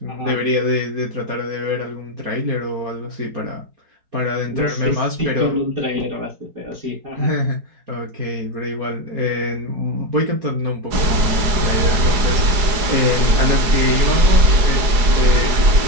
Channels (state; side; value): late; left; 4.9 ms